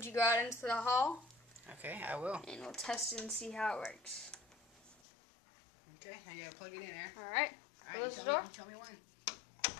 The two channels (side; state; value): right; drops out; at 5.0 s